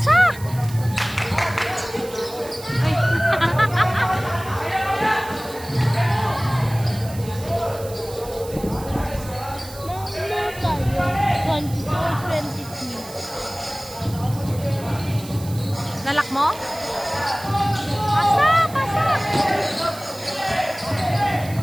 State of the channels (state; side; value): noise; right; hiss, 16 dB below the sound